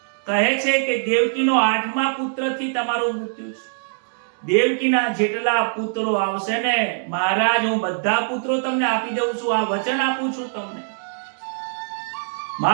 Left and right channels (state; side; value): silent; left; 64 dB below the other